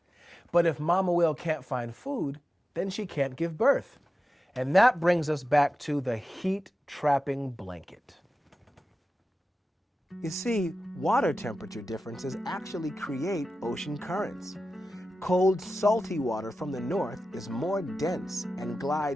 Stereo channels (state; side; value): normal; both; correlation 0.93